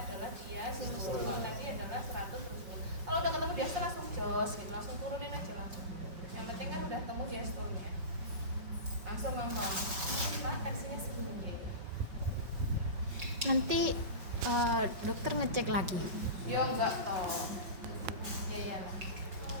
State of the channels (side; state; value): left; late; 5.4 ms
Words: adalah diastol. Kalau tadi adalah 100 terus. Kalau udah ketemu diastol langsung jos gitu, langsung turunin aja langsung. Yang penting kan udah ketemu diastolnya. Langsung ngomong, Pak tensinya segini. Nanti dokter ngecek lagi. Ya enggak toh. Ya iyalah.